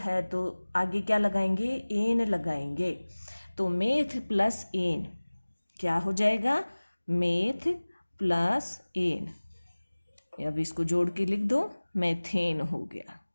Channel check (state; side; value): inverted; both; correlation -1.00